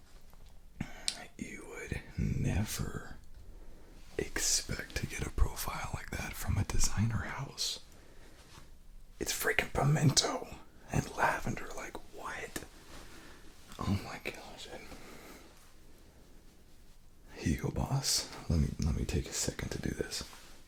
You would never expect to get a profile like that from a designer house? It's freaking pimento and lavender. Like, what? Oh my gosh. Hugo Boss. Let me take a second to do this.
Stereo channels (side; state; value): both; identical; correlation 1.00